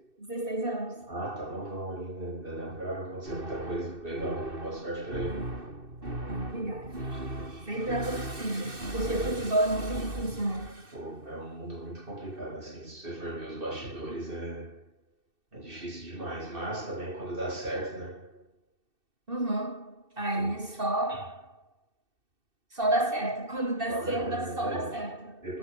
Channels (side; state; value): left; late; 2.6 ms